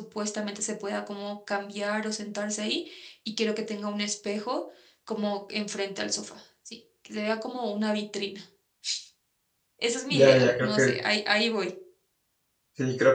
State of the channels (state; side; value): identical; both; correlation 1.00